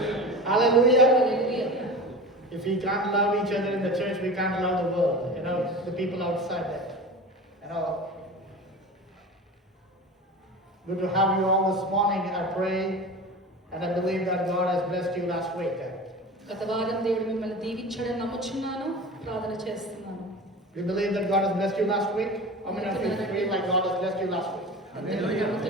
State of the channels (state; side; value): normal; both; correlation 0.32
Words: Hallelujah. If we can't love each other in the church, we can't love the world. The people outside that. Good to have you all this morning. I pray and I believe that God has blessed you last week. గత వారం దేవుడు మిమ్మల్ని దీవించడం నమ్ముచున్నాను, ప్రార్థన చేస్తున్నాను. You believe that God has blessed you last week? How many of you feel like God has blessed you last week?